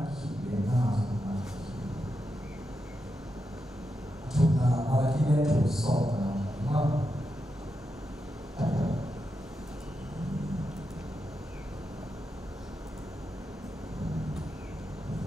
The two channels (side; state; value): both; normal; correlation 0.87